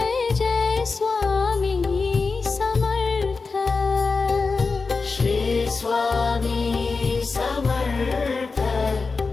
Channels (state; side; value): quieter; right; 4.3 dB